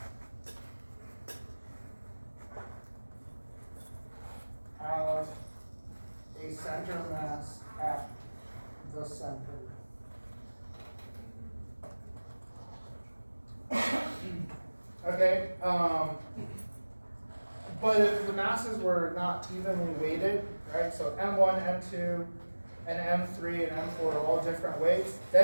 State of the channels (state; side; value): inverted; both; correlation -1.00